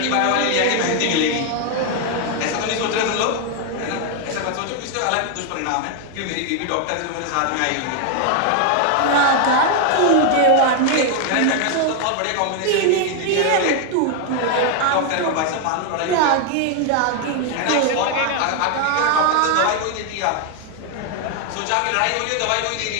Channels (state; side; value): different; both; correlation 0.01